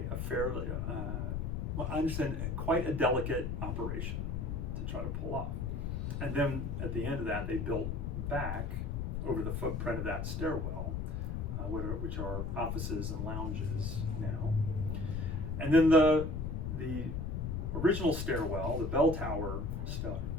fairly, well, I understand, quite a delicate operation to try to pull off. And then at the end of that, they built back over the footprint of that stairwell, which are offices and lounges now. And then the original stairwell, the bell tower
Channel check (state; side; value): noise; left; rumble, 2 dB below the sound